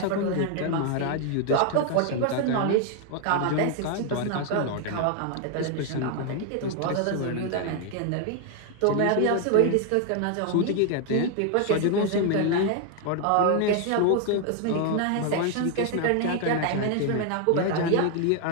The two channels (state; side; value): different; both; correlation 0.00